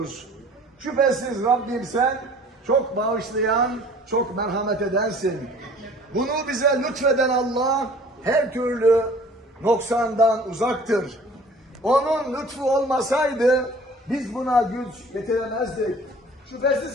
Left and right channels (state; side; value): normal; both; correlation 0.49